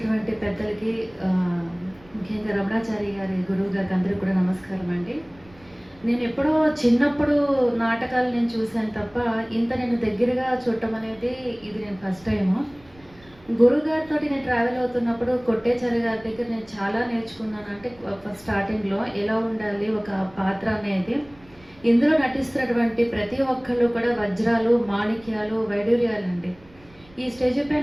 పెద్దలకి, ముఖ్యంగా రమణాచారి గారి గురువు గారికి అందరికీ కూడా నమస్కారం అండి. నేను ఎప్పుడో చిన్నప్పుడు నాటకాలు నేను చూశాను తప్ప ఇంత నేను దగ్గరగా చూడటం అనేది ఇది నేను ఫస్ట్ టైము. గురుగారితో నేను ట్రావెల్ అవుతున్నప్పుడు కొట్టేచారి గారి దగ్గర నేను చాలా నేర్చుకున్నాను. అంటే ఫస్ట్ స్టార్టింగ్లో ఎలా ఉండాలి ఒక పాత్ర అనేది. ఇందులో నటిస్తున్నటువంటి ప్రతి ఒక్కళ్ళు కూడా వజ్రాలు, మాణిక్యాలు, వైడూర్యాలు అండి. ఈ స్టేజ్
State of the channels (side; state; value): right; noise; rumble, 26 dB below the sound